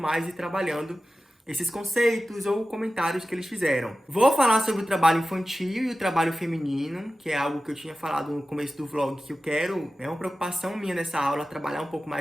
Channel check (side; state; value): both; normal; correlation 0.95